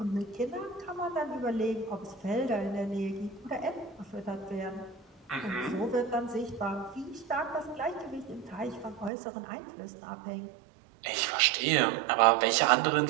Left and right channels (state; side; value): drops out; left; at 9.1 s